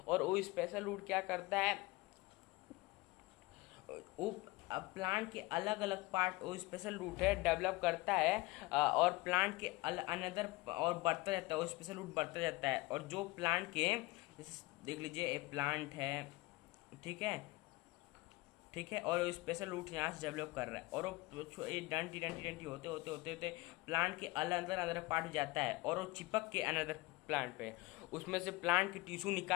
और वो स्पेशल रूट क्या करता है? वो प्लांट के अलग अलग पार्ट वो स्पेशल रूट है डेवलप करता है, और प्लांट के अनदर और बढ़ता जाता है, वो स्पेशल रूट बढ़ता जाता है। और जो प्लांट के, देख लीजिए एक प्लांट है, ठीक है, ठीक है, और स्पेशल रूट यहाँ से डेवलप कर रहा है, और वो डंटी डंटी डंटी होते होते होते होते प्लांट के अंदर अंदर पार्ट जाता है, और वो चिपक के अनदर प्लांट पे, उसमें से प्लांट की टिश्यू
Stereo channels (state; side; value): quieter; right; 21.6 dB